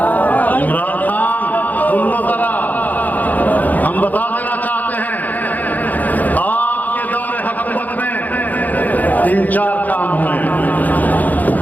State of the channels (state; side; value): late; right; 0.081 ms